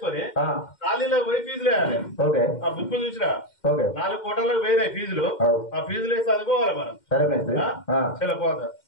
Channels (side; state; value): right; late; 2.1 ms